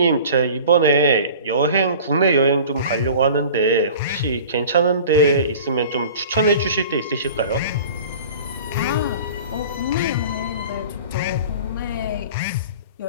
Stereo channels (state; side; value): inverted; both; correlation -0.42